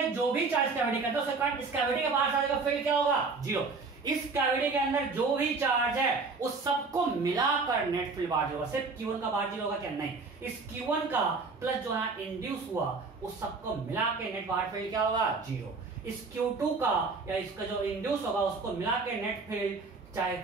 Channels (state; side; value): quieter; left; 4.2 dB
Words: जो भी चार्ज कैविटी करता है उसके कारण इस कैविटी के बाहर जाने का फील्ड क्या होगा 0। इस कैविटी के अंदर जो भी चार्ज है उस सबको मिलाकर नेट फील्ड बाहर होगा। सिर्फ Q1 का बाहर 0 होगा क्या? नहीं, इस Q1 का प्लस जो है इंड्यूस हुआ उस सबको मिला के नेट बाहर फील्ड क्या होगा 0। इस Q2 का या इसका जो इंड्यूस होगा उसको मिला के नेट फील्ड, चाहे